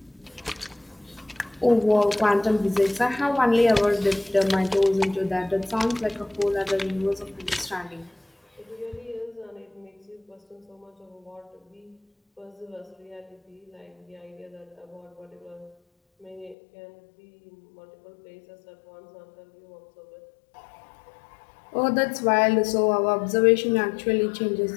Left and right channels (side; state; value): right; drops out; at 16.6 s